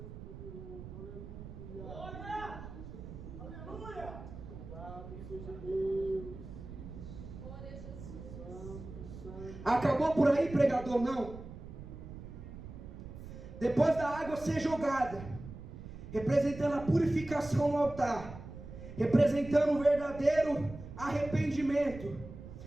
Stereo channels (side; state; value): right; noise; rumble, 12 dB below the sound